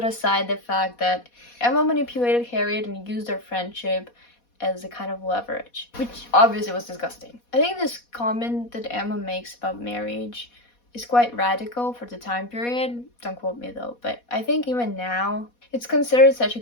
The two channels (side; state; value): right; late; 4.2 ms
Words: aside the fact that Emma manipulated Harriet and used their friendship as a kind of leverage, which obviously was disgusting. I think this comment that Emma makes about marriage is quite radical for the time period. Don't quote me though, but I think even now, it's considered such a